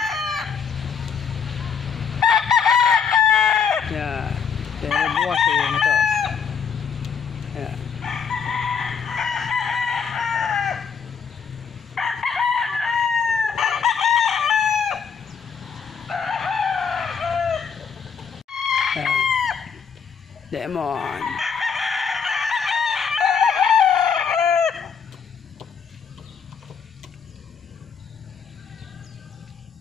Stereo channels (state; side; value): quieter; right; 6.5 dB